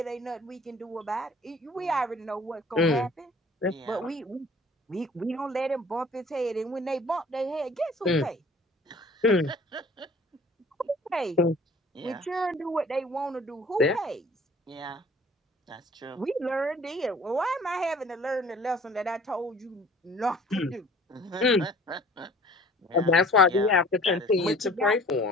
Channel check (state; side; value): normal; both; correlation 0.50